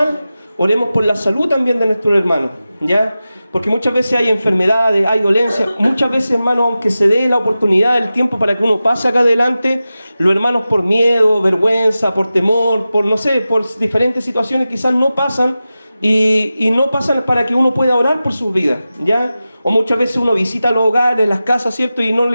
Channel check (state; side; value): inverted; both; correlation -0.94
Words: oremos por la salud también de nuestro hermano, ¿ya? Porque muchas veces hay enfermedades, hay dolencias. Muchas veces, hermano, aunque se dé la oportunidad, el tiempo para que uno pase acá adelante, los hermanos por miedo, vergüenza, por temor, por no sé, por diferentes situaciones quizás no pasan y no pasan para que uno pueda orar por sus vidas, ¿ya? O muchas veces uno visita los hogares, las casas, ¿cierto? Y no